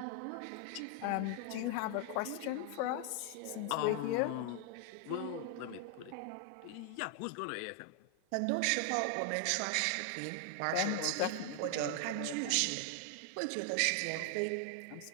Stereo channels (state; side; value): different; both; correlation 0.00